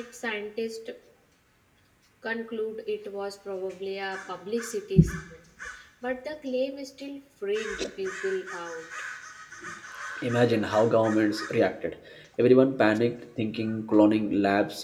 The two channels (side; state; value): both; identical; correlation 1.00